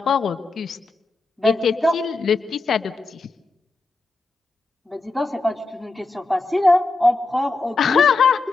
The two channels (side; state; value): right; quieter; 3.5 dB